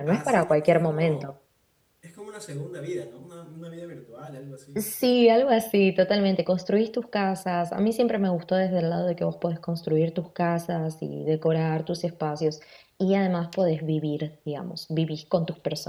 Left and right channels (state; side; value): identical; both; correlation 1.00